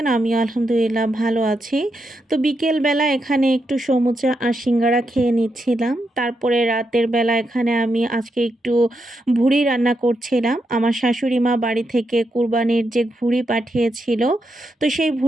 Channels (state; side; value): normal; both; correlation 0.83